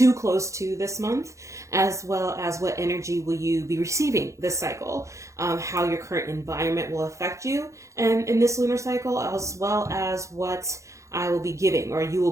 close to this month, as well as what energy will you be receiving this cycle, how your current environment will affect you and in this lunar cycle, as well as what I will be giving or you will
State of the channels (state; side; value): late; left; 0.15 ms